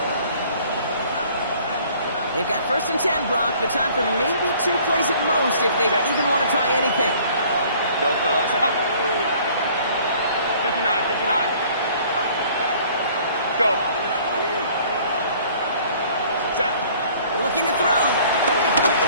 They've got 1st and 10, Brock, but time for maybe 2 plays at most if they even want to try anything. Built 59. Go. Set. Looking to throw.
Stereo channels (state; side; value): inverted; both; correlation -0.55